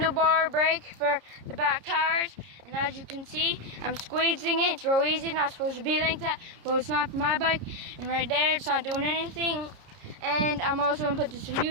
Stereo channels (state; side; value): late; left; 30 ms